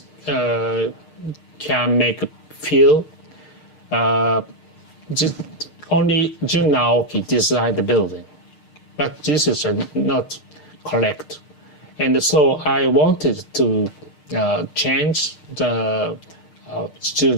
can make feel only Jun Aoki designed the building, but this is not correct. And so I wanted to change the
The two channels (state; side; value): late; right; 6.6 ms